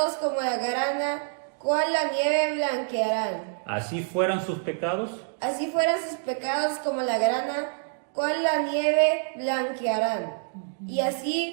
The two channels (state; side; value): silent; left; digital silence